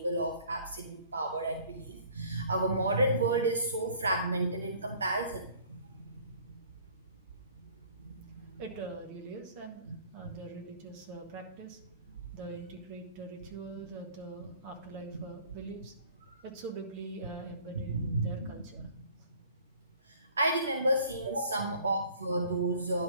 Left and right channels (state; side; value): inverted; both; correlation -0.53